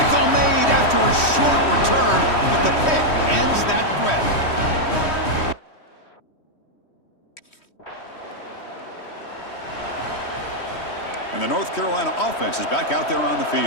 made after a short return, but the pick ends that threat. And the North Carolina offense is back out there on the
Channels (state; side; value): late; right; 3.1 ms